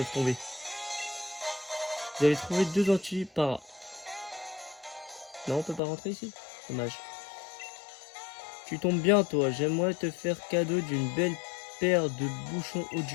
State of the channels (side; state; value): right; drops out; at 5.8 s